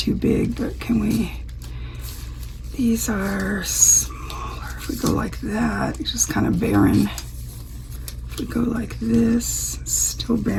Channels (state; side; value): identical; both; correlation 1.00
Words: big, but can we... These are smaller. If we go like that, it's just kind of barren. If we go like this, still